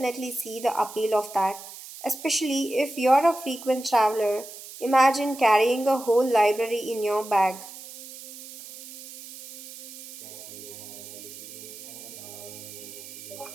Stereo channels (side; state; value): right; noise; hiss, 14 dB below the sound